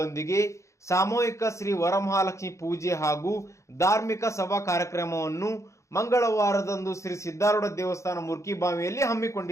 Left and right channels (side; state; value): right; late; 0.14 ms